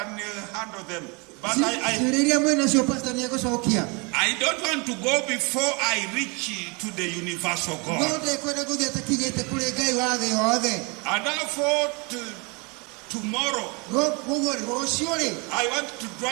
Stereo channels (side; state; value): left; quieter; 30.5 dB